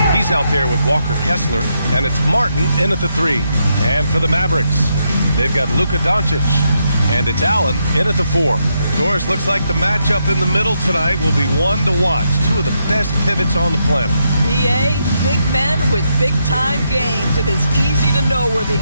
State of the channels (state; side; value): inverted; both; correlation -0.81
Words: He's out there with Walker Kessler, and it's Martin in at the 3. And for the Mavericks, they've got Luka Doncic, and it's Allen in at the 4. Doris, looks like the matchup in the middle tonight will be one to watch. Two of the best pivots on the planet. BA, big men with big-time games. It is easy to know where the